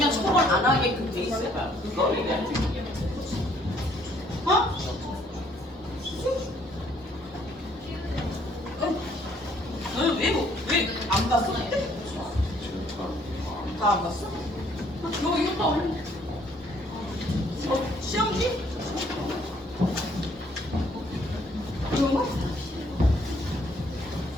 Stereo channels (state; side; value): normal; both; correlation 0.64